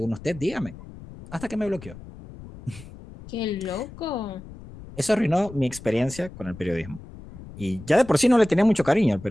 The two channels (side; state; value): left; noise; rumble, 16 dB below the sound